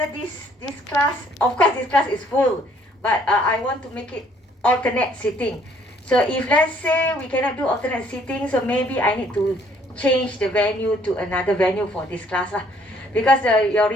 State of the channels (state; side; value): normal; both; correlation 0.62